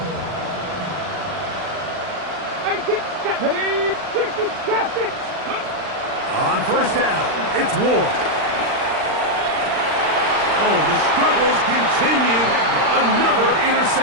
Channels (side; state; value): left; late; 39 ms